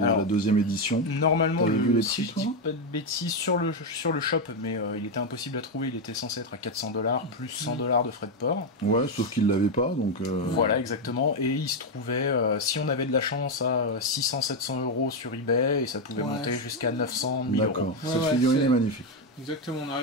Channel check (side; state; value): both; normal; correlation 0.05